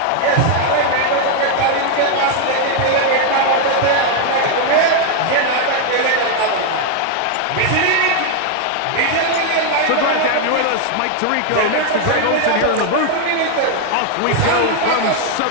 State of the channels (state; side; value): different; both; correlation 0.00